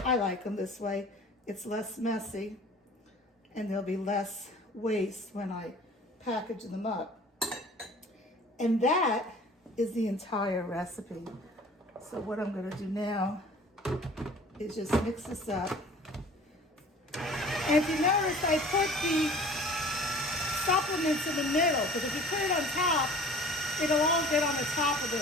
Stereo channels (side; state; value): both; normal; correlation 0.46